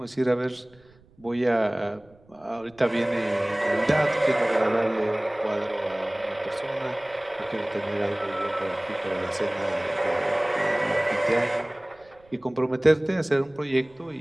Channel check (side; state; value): right; noise; rumble, 29 dB below the sound